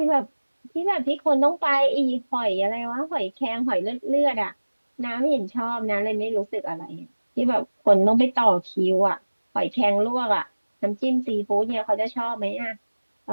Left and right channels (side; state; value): both; inverted; correlation -1.00